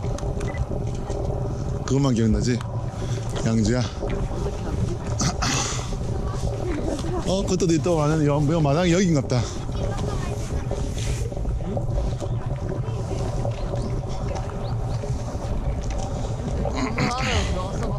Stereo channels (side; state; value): both; identical; correlation 1.00